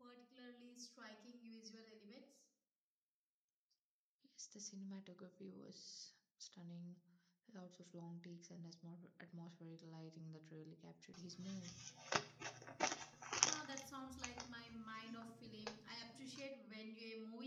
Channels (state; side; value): identical; both; correlation 1.00